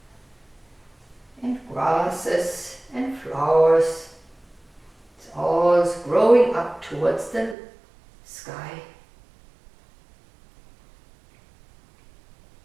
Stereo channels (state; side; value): drops out; left; at 7.6 s